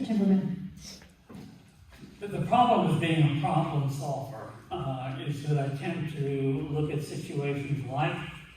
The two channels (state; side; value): identical; both; correlation 1.00